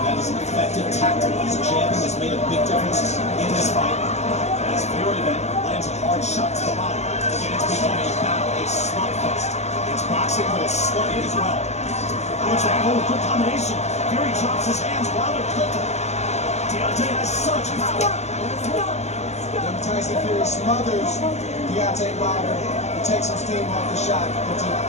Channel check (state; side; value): late; right; 0.32 ms